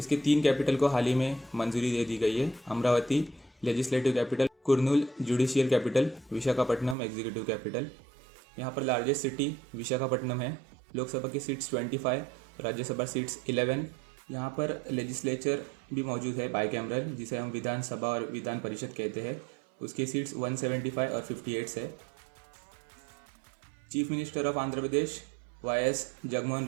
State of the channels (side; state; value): left; drops out; at 7.0 s